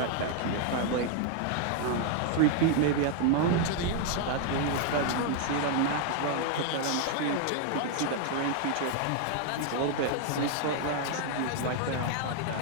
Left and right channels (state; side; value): different; both; correlation 0.00